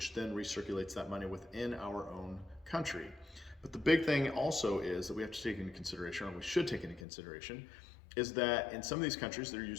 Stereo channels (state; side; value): drops out; right; at 7.1 s